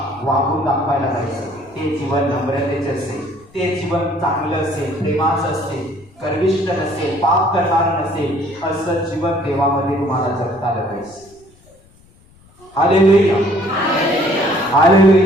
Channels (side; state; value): left; noise; rumble, 28 dB below the sound